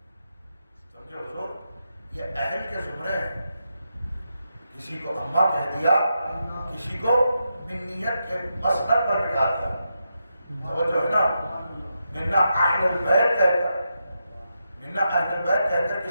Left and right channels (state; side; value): inverted; both; correlation -0.85